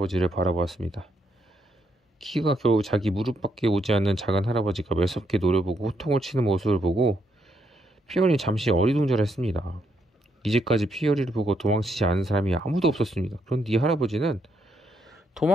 바라보았습니다. 키가 겨우 자기 무릎밖에 오지 않는 작은 할아버지가 매섭게 노려보고 호통을 치는 모습을 보고 피어리는 잠시 어리둥절했습니다. 이제까지 피어리를 보고 도망치지 않은 사람이 아무도 없었습니다. 그런데 이 할아버지는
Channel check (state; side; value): normal; both; correlation 0.76